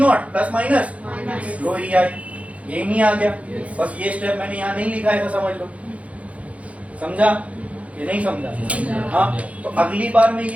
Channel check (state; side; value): late; left; 0.065 ms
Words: प्लस माइनस लो ई आई, ये नहीं आ गया। बस ये स्टेप मैंने यहाँ नहीं लिखा है तो समझ लो। समझा ये नहीं समझा? हाँ, तो अगली बार मैं